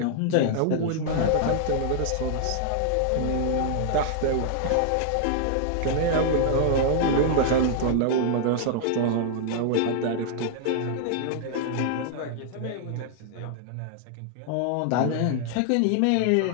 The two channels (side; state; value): both; different; correlation -0.01